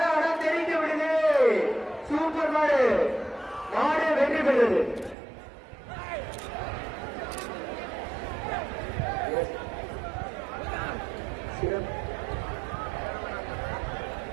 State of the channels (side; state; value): left; drops out; at 5.2 s